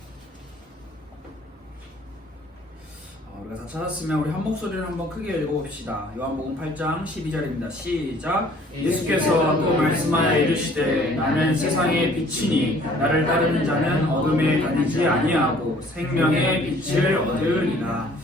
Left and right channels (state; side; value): normal; both; correlation 0.56